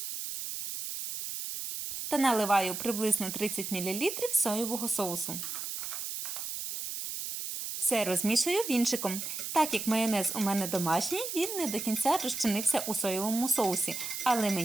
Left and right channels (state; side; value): noise; right; hiss, 5 dB below the sound